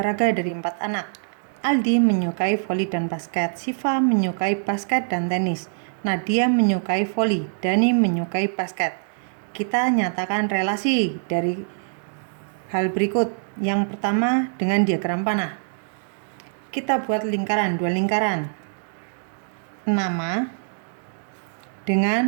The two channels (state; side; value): silent; left; digital silence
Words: dari 4 anak. Aldi menyukai voli dan basket, Siva menyukai basket dan tenis, Nadia menyukai voli, Dani menyukai basket. Kita nyatakan relasi dari hal berikut. Yang pertama, dengan diagram panah. Kita buat lingkaran, 2 lingkaran. Nama